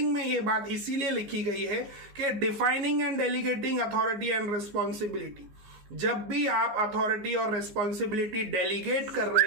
में ये बात इसीलिए लिखी गई है कि defining and delegating authority and responsibility. जब भी आप अथॉरिटी और रिस्पॉन्सिबिलिटी डेलीगेट कर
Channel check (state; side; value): late; left; 15 ms